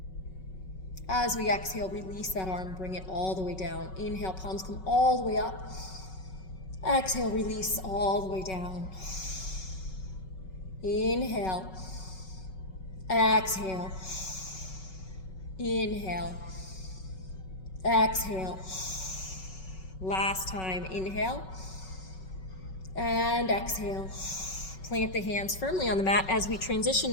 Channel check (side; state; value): right; late; 5.3 ms